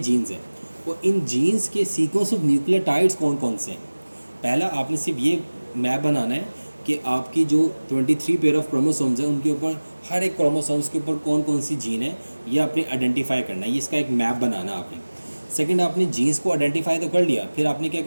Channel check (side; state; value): both; inverted; correlation -1.00